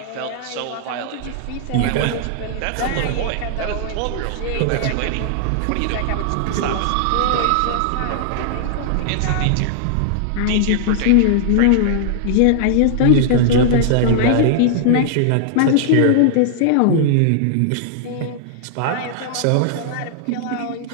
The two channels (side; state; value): both; different; correlation -0.01